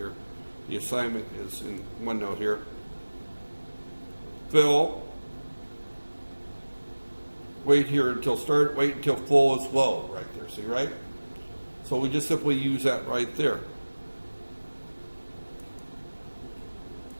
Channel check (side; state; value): both; inverted; correlation -1.00